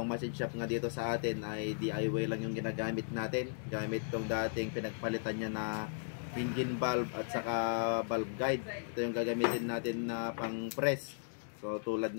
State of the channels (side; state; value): right; silent; digital silence